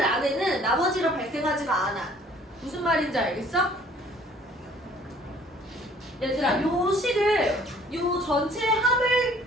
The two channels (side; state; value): both; normal; correlation 0.56